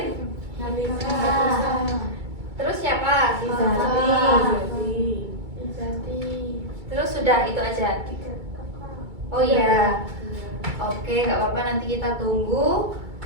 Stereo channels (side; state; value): left; late; 2.2 ms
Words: Terus siapa? Terus sudah itu aja. Oh iya. Oke, nggak apa-apa, nanti kita tunggu.